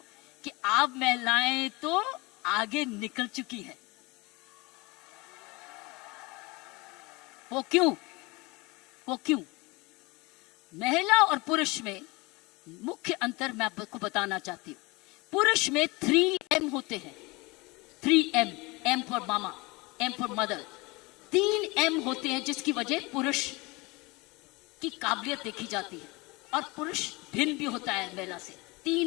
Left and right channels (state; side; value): quieter; right; 24.7 dB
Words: कि आप महिलाएं तो आगे निकल चुकी हैं। वो क्यों? महिला और पुरुष में मुख्य अंतर मैं आपको बताना चाहती हूं। पुरुष में 3M होते हैं, 3M, M for mama, M for mother, 3M होते हैं, जिसकी वजह पुरुष की काबिलियत देखी जाती है। और पुरुष भिन्न भी होता है महिला से।